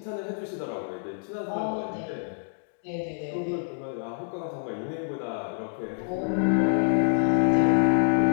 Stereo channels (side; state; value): right; silent; digital silence